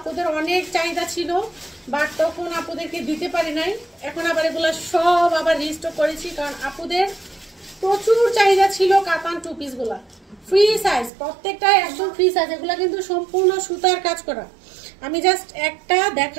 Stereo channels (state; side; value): drops out; left; at 11.1 s